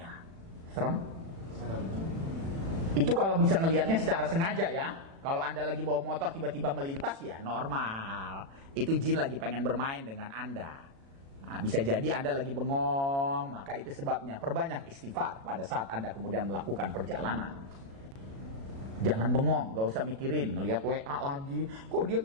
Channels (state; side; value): late; left; 36 ms